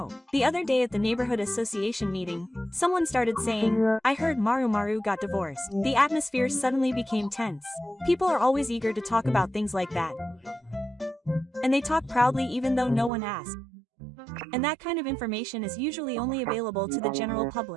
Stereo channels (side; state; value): left; drops out; at 13.1 s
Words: The other day at the neighborhood association meeting, someone started saying, "I heard Maru got divorced." The atmosphere suddenly became tense. People are always eager to talk about things like that. And they talk proudly even though no one asked. And that kind of information is usually only available to the general